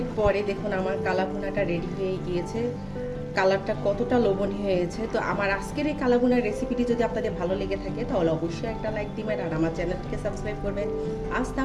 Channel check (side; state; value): both; identical; correlation 1.00